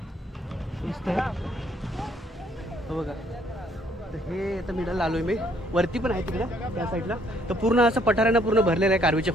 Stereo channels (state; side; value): normal; both; correlation 0.66